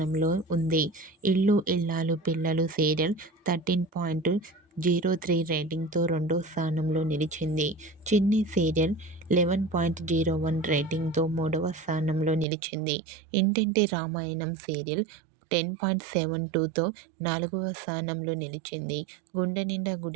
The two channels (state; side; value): drops out; left; at 12.5 s